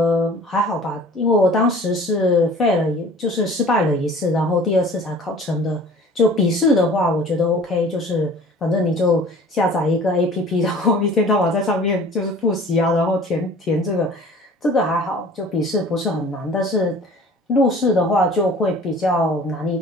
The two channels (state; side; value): normal; both; correlation 0.46